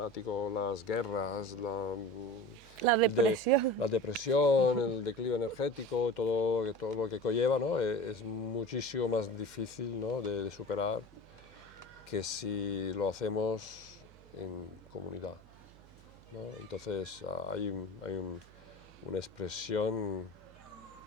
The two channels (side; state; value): right; noise; hum, 23 dB below the sound